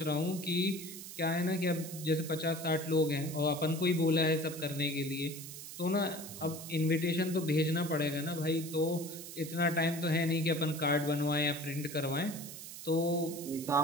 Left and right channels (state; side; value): noise; right; hiss, 11 dB below the sound